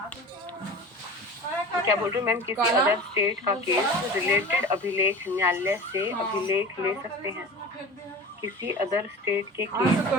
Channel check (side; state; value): both; normal; correlation 0.35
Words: क्या बोल रहे हो मैम, किसी अदर स्टेट का केस रिलेटेड अभिलेख न्यायालय से अभिलेख ले सकते हैं। किसी अदर स्टेट के